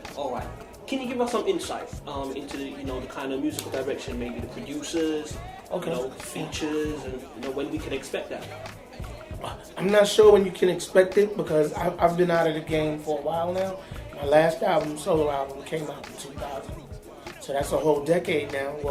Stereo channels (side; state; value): both; identical; correlation 1.00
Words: All right. Can you give us some insight into the, you know, the kind of musical direction, maybe the producers, you know, features, and you know when we can expect that? I'm not sure when you can expect it because I've been out of the game for a while now. My last album, solo album, came out in 2000, so that's a whole decade now.